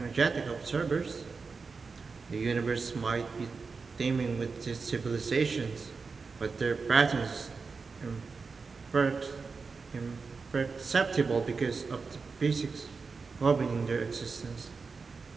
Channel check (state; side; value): quieter; left; 4.7 dB